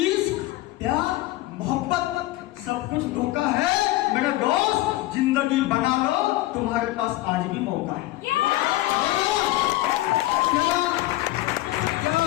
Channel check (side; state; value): right; quieter; 17.4 dB